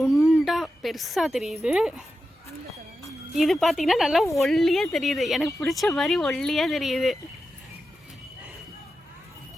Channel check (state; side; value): normal; both; correlation 0.90